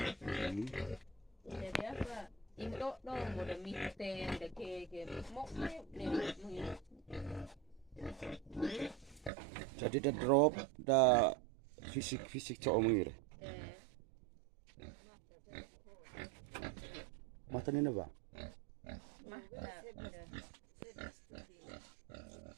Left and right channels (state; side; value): drops out; left; at 9.3 s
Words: Jadi apa? Indo dong, udah mite, udah keke, mau Jadi dah drop, dah fisik cowok mengir. Mata ni apa?